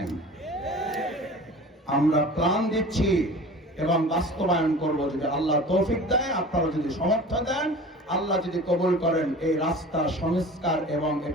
আমরা প্ল্যান দিচ্ছি এবং বাস্তবায়ন করব যদি আল্লাহ তৌফিক দেয়, আপনারা যদি সমর্থন দেন, আল্লাহ যদি কবুল করেন, এই রাস্তা সংস্কার এবং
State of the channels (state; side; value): normal; both; correlation 0.40